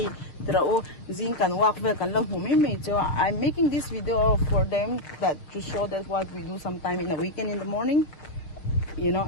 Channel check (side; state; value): right; late; 6.6 ms